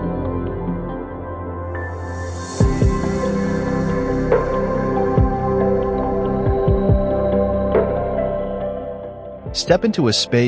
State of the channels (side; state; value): both; identical; correlation 1.00